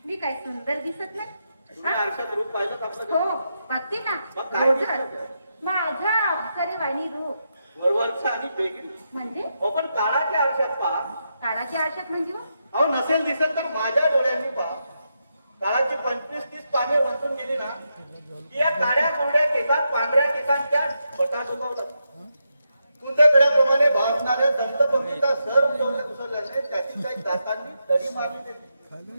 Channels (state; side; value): inverted; both; correlation -0.84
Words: मी काय सुंदर दिसत नाही तुम्ही आरशात रूप पाहिलं आपलं हो बघते ना मग काय रोजच. माझा अप्सरे वाणी रूप वरवरचा आणि बेगडी म्हणजे हो पण काळाच्या आरशात पहा. काळाच्या आरशात म्हणजे हो? अहो नसेल दिसत तर माझ्या डोळ्यांनी पहा. काळाची 25-30 पाने उलटून गेली ना की या काळ्या कोरड्या केसात पांढऱ्या केसांच्या बटा डोकावतात. कुंदकड्याप्रमाणे भासणाऱ्या दंतपंक्तीचा सर उसरल्याने त्याची काही दातांनी दडी मारली गेली.